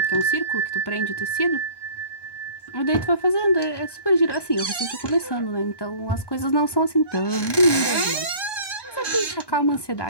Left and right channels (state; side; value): late; right; 1.1 ms